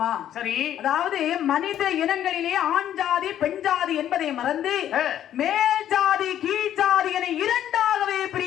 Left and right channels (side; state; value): right; quieter; 10.9 dB